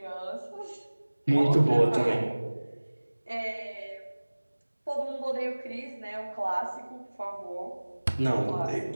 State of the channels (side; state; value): both; inverted; correlation -1.00